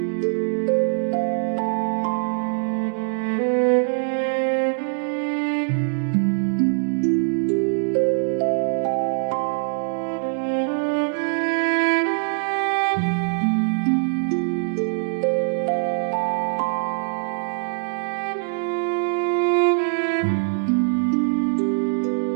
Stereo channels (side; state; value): left; silent; digital silence